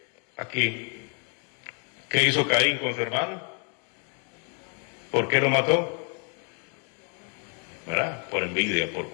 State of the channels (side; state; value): right; quieter; 39.8 dB